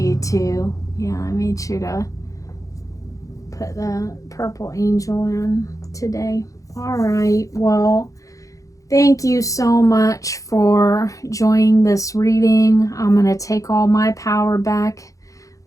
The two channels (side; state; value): right; late; 0.16 ms